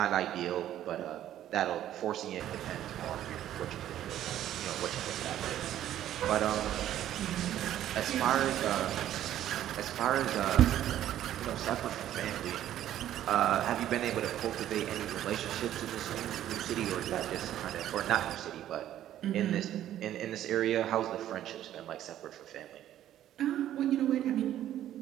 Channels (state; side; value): quieter; left; 12.0 dB